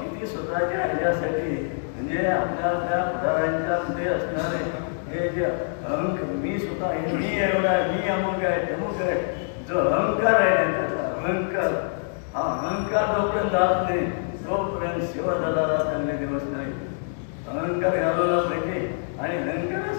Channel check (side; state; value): right; silent; digital silence